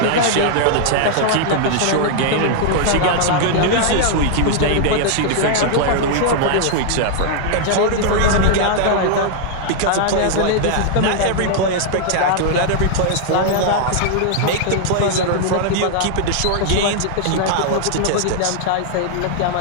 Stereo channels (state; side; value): different; both; correlation 0.00